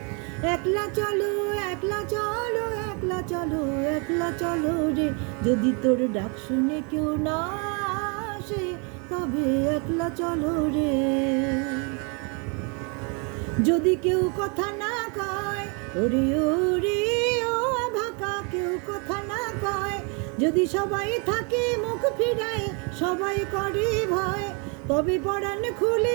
একলা চলো, একলা চলো, একলা চলো, একলা চলো রে। যদি তোর ডাক শুনে কেউ না আসে তবে একলা চলো রে। যদি কেউ কথা না কয়, ওরে ওরে ও ভাকা, কেউ কথা না কয়, যদি সবাই থাকে মুখ ফিরায়, সবাই করে ভয়, তবে পরাণ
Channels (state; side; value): quieter; left; 34.7 dB